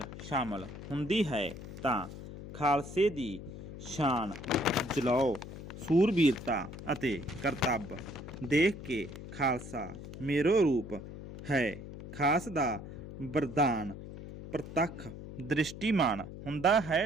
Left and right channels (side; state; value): left; noise; hum, 11 dB below the sound